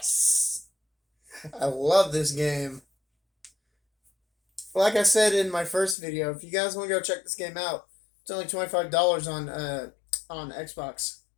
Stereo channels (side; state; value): right; drops out; at 6.0 s